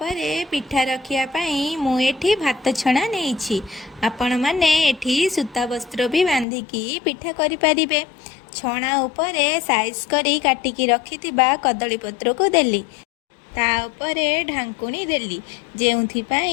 पिठा रखिया पई मु एठी भात छणा नेइछि। आपण माने एठी सूता वस्त्र भी बांधिकी पिठा करि पारिबे। छणा उपरे साइज करी काटिकी रखिथिबा कदली पत्र को देली। ता उपरे ढांकुणी देली जेउथि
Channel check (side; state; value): right; drops out; at 6.5 s